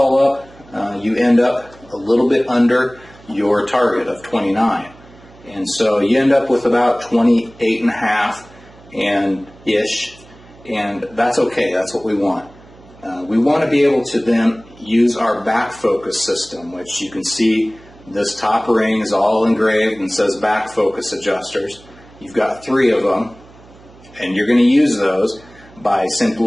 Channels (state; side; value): noise; right; hum, 24 dB below the sound